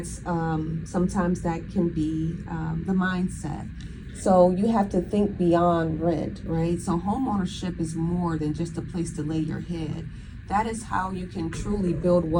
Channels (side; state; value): both; identical; correlation 1.00